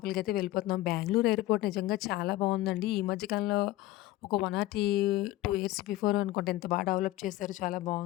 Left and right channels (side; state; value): right; quieter; 16.6 dB